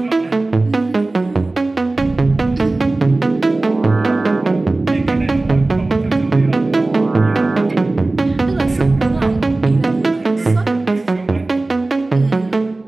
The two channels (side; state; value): left; quieter; 3.1 dB